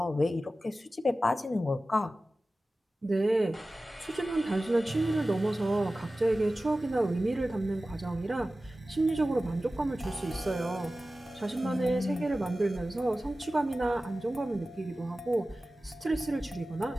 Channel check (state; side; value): normal; both; correlation 0.96